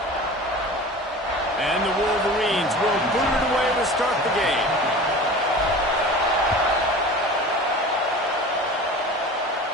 And the Wolverines will boot it away to start the game.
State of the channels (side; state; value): both; normal; correlation 0.37